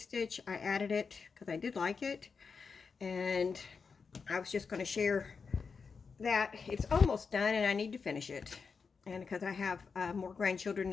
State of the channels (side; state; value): right; quieter; 5.3 dB